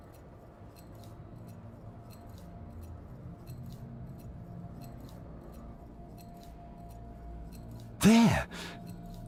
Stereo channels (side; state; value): both; identical; correlation 1.00